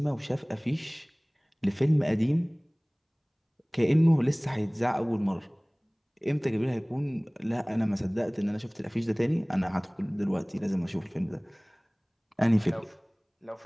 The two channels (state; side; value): identical; both; correlation 1.00